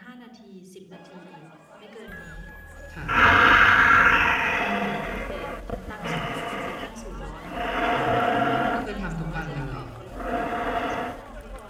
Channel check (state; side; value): identical; both; correlation 1.00